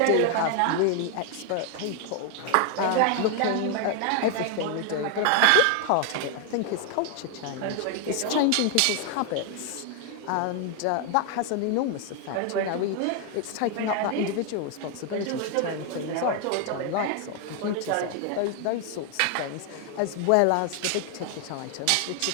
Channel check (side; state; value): both; different; correlation 0.00